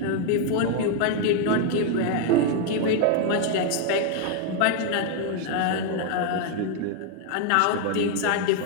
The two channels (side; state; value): both; different; correlation 0.00